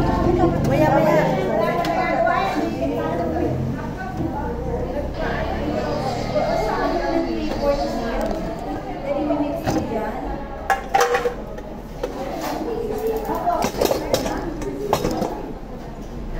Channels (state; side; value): identical; both; correlation 1.00